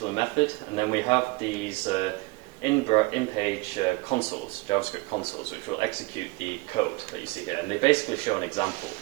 method, and then we have these in-page consoles, JavaScript consoles, which will execute the code that you see here. And they basically show an example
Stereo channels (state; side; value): quieter; left; 24.1 dB